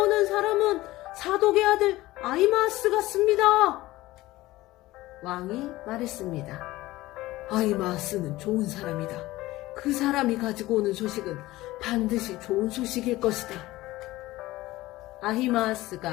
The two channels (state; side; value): quieter; right; 17.9 dB